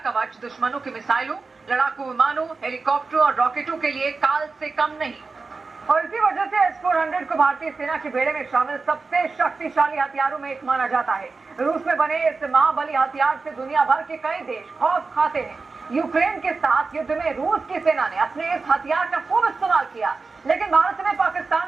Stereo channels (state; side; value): quieter; left; 4.2 dB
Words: कवच दुश्मनों की मिसाइलों, लड़ाकू विमानों, हेलीकॉप्टरों और रॉकेटों के लिए काल से कम नहीं। और इसी वजह से S-400 को भारतीय सेना के बेड़े में शामिल सबसे शक्तिशाली हथियारों में एक माना जाता है। रूस में बने इस महाबली हथियार से दुनिया भर के कई देश खौफ खाते हैं। यूक्रेन के साथ युद्ध में रूस की सेना ने अपने इस हथियार का खूब इस्तेमाल किया, लेकिन भारत ने